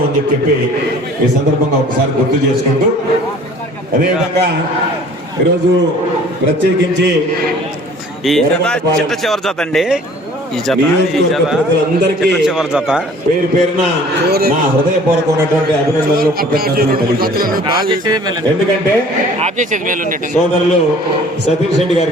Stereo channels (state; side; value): normal; both; correlation 0.50